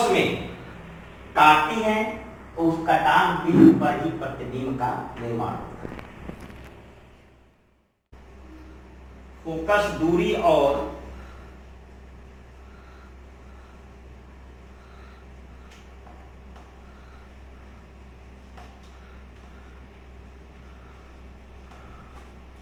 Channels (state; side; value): identical; both; correlation 1.00